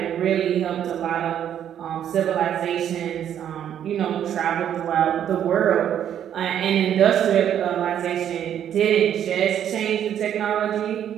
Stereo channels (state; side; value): quieter; left; 9.9 dB